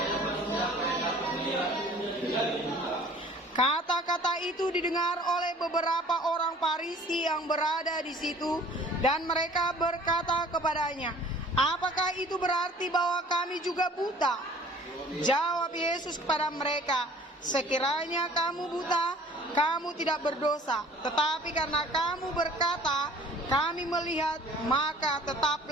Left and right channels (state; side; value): normal; both; correlation 0.51